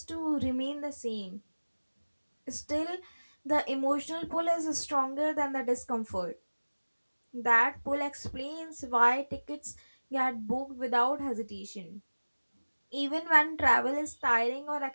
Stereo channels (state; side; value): inverted; both; correlation -1.00